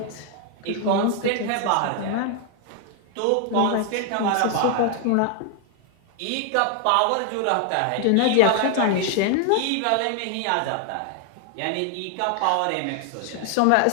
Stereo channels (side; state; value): both; different; correlation 0.00